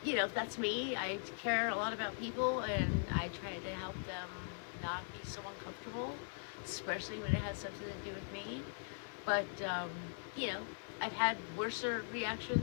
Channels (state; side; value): silent; right; digital silence